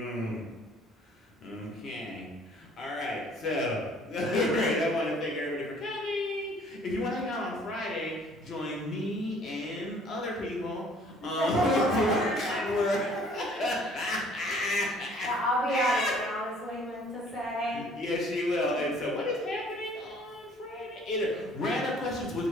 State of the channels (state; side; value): normal; both; correlation 0.56